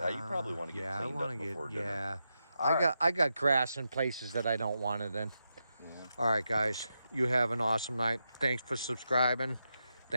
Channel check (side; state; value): both; inverted; correlation -0.87